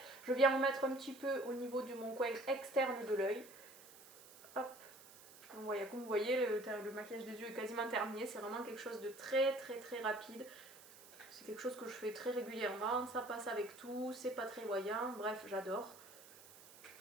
Je viens en mettre un petit peu au niveau de mon coin externe de l'œil. Hop. Donc voilà, comme vous voyez, le maquillage des yeux est quasiment terminé. C'est vraiment quelque chose de très rapide. C'est quelque chose que je fais très régulièrement. Ça passe avec tout, c'est pas très voyant. Bref, j'adore.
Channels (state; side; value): noise; right; hiss, 20 dB below the sound